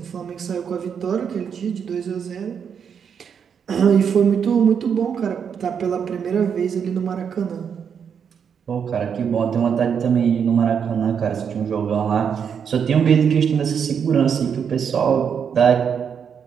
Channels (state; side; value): quieter; left; 7.3 dB